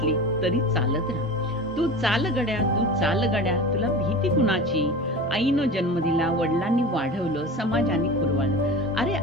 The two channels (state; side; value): normal; both; correlation 0.32